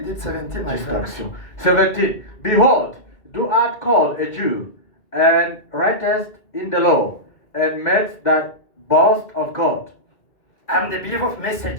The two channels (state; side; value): late; right; 2.3 ms